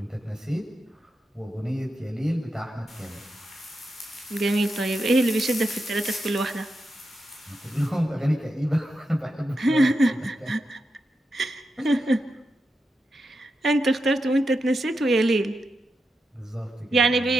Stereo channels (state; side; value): normal; both; correlation 0.87